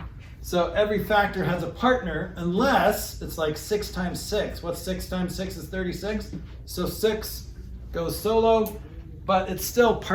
So every factor has a partner, unless it's like 6 times 6. What's 6 times 6 is 36. So 6 goes solo, but it's still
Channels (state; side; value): identical; both; correlation 1.00